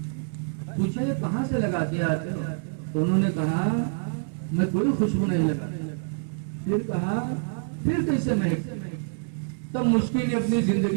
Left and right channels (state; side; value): silent; left; 61 dB below the other